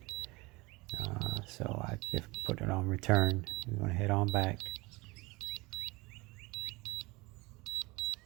So I just put it on return. We're going to head on back.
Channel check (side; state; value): left; quieter; 23.7 dB